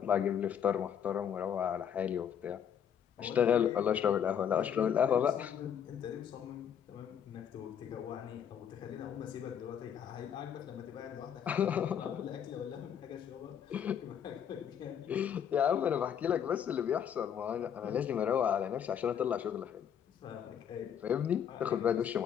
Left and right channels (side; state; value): right; quieter; 8.6 dB